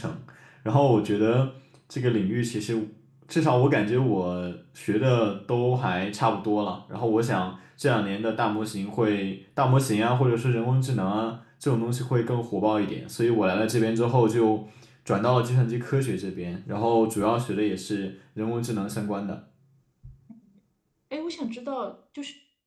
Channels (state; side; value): identical; both; correlation 1.00